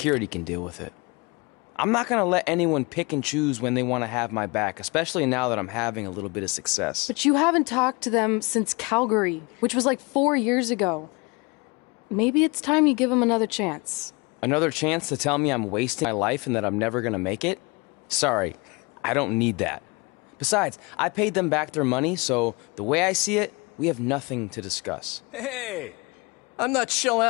can deal with it. I'm not gonna let anyone pick and choose when they want to have my back, especially now that I'm having a little bit of success. But you haven't talked to them since Calgary, which was like 4 years ago. Maybe it's time you give them another chance. Another chance to tell me I'm wasting my life and that I'm never gonna make it? Sorry, I don't need that. Besides, I paid them back their money, so the way I see it, we have nothing to discuss. Hey, I'm not shelling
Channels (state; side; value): quieter; right; 27.6 dB